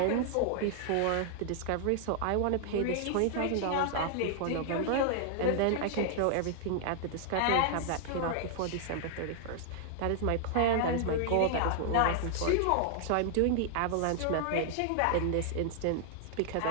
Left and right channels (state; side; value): different; both; correlation -0.01